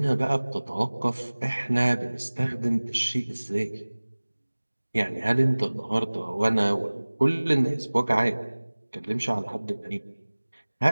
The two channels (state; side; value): inverted; both; correlation -1.00